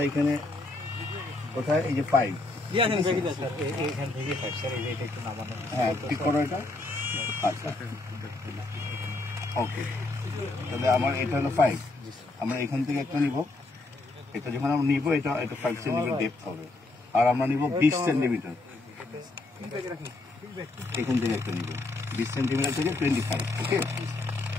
এখানে কোথায় এই যে 5, হ্যাঁ ঠিক করো এটা। আচ্ছা ওকে, তাহলে আমার এটা হলো 5, আমরা এখান থেকে একটা নিব, এটা যখন আমরা নিব এটা 5 সেন্টিমিটার ডেপথ হবে, আর আমরা নিব 20 সেন্টিমিটার, এখান থেকে একটা নিব 20 সেন্টিমিটার থেকে 25। ওকে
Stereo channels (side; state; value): right; quieter; 3.1 dB